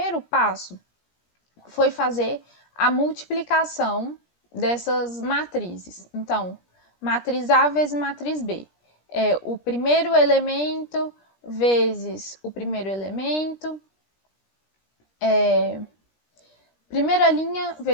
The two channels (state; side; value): late; right; 17 ms